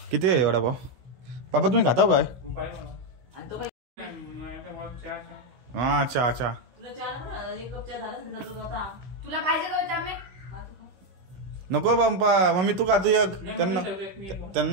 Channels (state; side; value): late; left; 16 ms